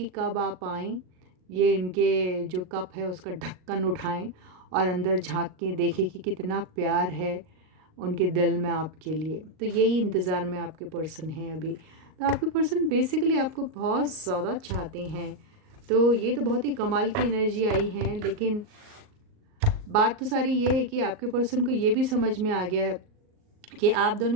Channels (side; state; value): left; late; 38 ms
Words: कब आप आएँ, ये इनके जो कप है उसका ढक्कन उठाएं और अंदर झांक के देखें कि कितना प्यार है उनके दिल में आपके लिए। तो यही इंतज़ार में आपके पर्सन हैं अभी। तो आपके पर्सन बेसिकली आपको बहुत ज़्यादा चाहते हैं। तो ये तो बहुत ही कमाल की एनर्जी आई है, लेकिन बात तो सारी ये है कि आपके पर्सन को ये भी समझ में आ गया है कि आप